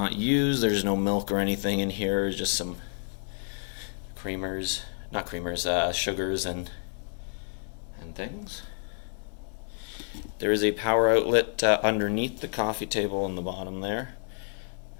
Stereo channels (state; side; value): silent; right; 58 dB below the other